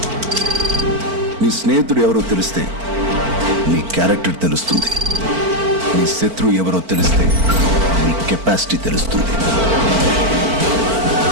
నీ స్నేహితుడు ఎవరో తెలిస్తే నీ క్యారెక్టర్ తెలుస్తుంది. నీ శత్రువు ఎవరో తెలిస్తే నీ కెపాసిటీ తెలుస్తుంది.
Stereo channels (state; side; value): late; left; 4.5 ms